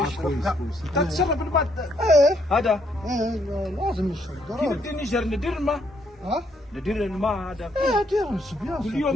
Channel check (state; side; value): normal; both; correlation 0.72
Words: يشرب كويس كاع. كويس. انت تشرب الماء ايه هذا. ايه لازم يشرب كيف ضروري. بدي نجر ندير الماء؟ ها؟ ندير الماء هذا ايه دير الصبيان كل